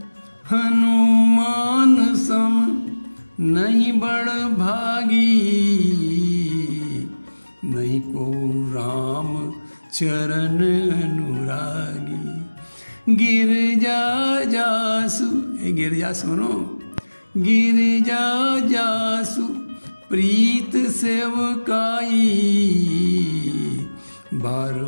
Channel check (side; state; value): both; inverted; correlation -1.00